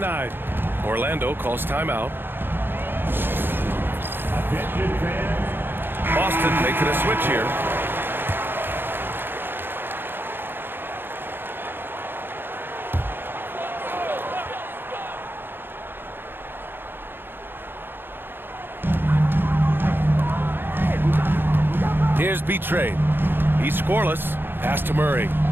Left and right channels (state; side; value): late; left; 0.10 ms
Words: Orlando calls timeout. Attention fans. Boston making a switch here. Here's B-Trade. He's scoreless. Pass to Murray.